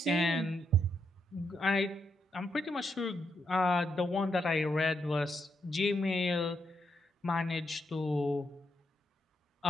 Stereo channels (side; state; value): both; normal; correlation 0.80